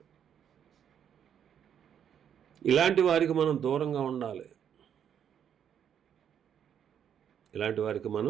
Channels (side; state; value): left; quieter; 8.8 dB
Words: ఇలాంటి వారికి మనం దూరంగా ఉండాలి. ఇలాంటి వారికి